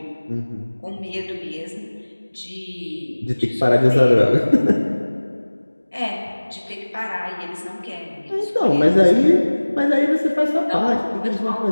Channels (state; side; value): inverted; both; correlation -1.00